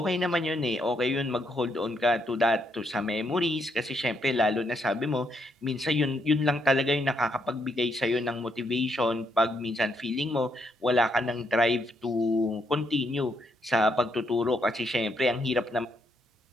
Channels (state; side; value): normal; both; correlation 0.76